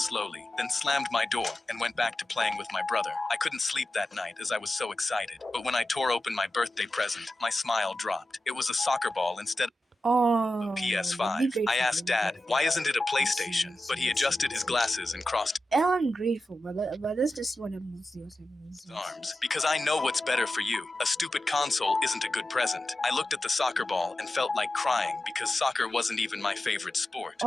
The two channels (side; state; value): both; normal; correlation 0.93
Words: then slammed my door and went back to playing with my brother. I couldn't sleep that night as I was so excited, but when I tore open my birthday present, my smile dropped. It was a soccer ball instead of Oh, PS5. I asked Dad, "Why isn't it a PlayStation?" But he adjusted his glasses and crossed I'm grateful, but let's just see what happens. his arms. "Because I know what's better for you. A stupid console isn't a good present." I looked at the soccer ball and felt like crying because soccer wasn't even my favorite sport.